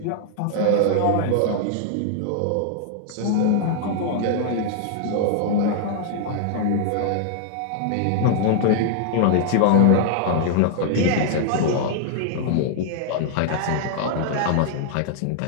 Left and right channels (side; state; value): both; different; correlation 0.00